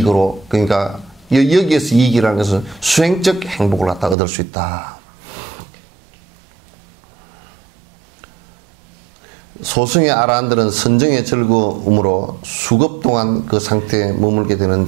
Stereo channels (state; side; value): drops out; left; at 4.2 s